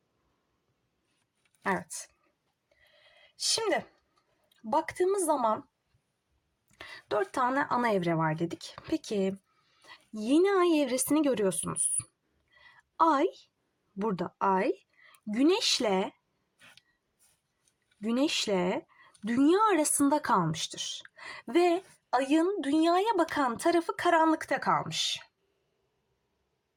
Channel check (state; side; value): identical; both; correlation 1.00